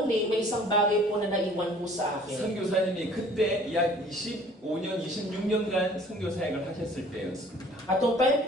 may isang bagay po na naiwan po sa akin. 선교사님이 그때 약 25년, 26년간 선교사역을 하셨을 때였습니다. At yung time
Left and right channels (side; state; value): both; normal; correlation 0.52